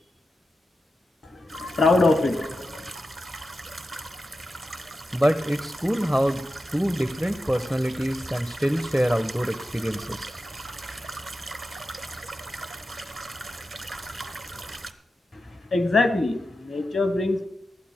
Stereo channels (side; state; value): both; normal; correlation 0.91